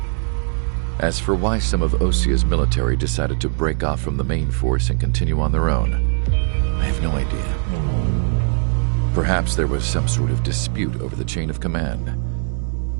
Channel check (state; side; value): silent; left; 56 dB below the other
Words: As for why some of Osea's military decided to break off from the main force and continue on their own, I have no idea. Perhaps there was some sort of dispute over the chain of command.